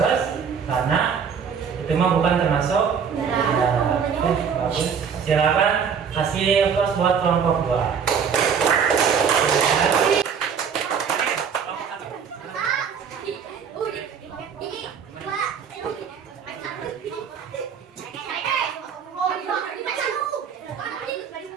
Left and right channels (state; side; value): quieter; left; 6.9 dB